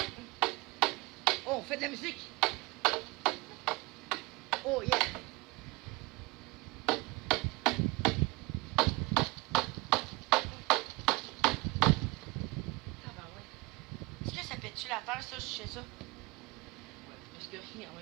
Oh, on fait de la musique. Oh yeah. Ah ben ouais. Est-ce que ça pète-tu la terre, ça, je sais ça? Ouais, parce que en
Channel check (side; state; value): left; quieter; 23.9 dB